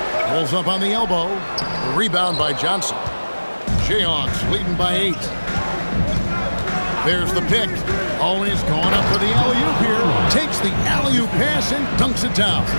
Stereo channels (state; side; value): inverted; both; correlation -1.00